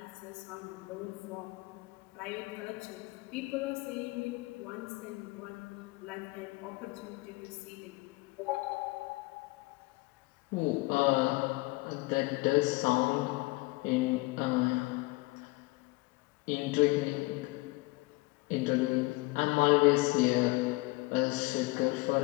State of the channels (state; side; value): quieter; right; 23.7 dB